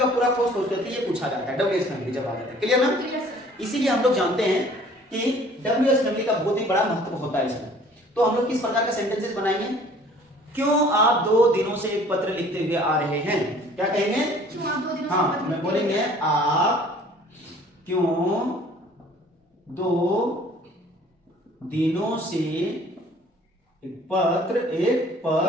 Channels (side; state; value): both; normal; correlation 0.53